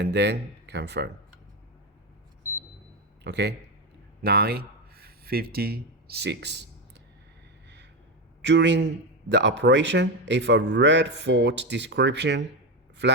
then confirm. Okay, 9:56. During the operation, if a red fault description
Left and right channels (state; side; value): normal; both; correlation 0.14